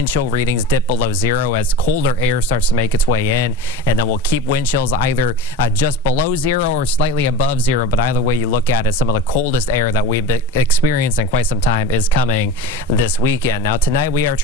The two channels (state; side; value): normal; both; correlation 0.33